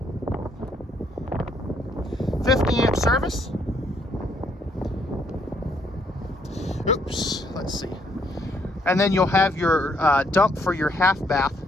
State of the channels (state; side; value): normal; both; correlation 0.70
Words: 50-amp service. Oops, let's see. And then you'll have your dump for your half bath